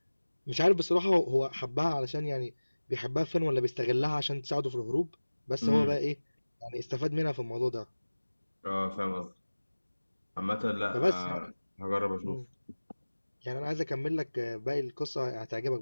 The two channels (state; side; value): inverted; both; correlation -1.00